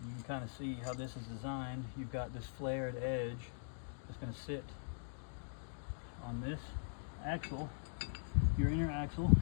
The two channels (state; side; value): silent; right; digital silence